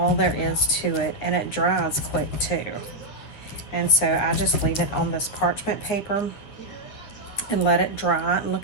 there is to it. And it dries quick, too. And so I just leave it on this parchment paper and let it dry. And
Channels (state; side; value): late; right; 9.9 ms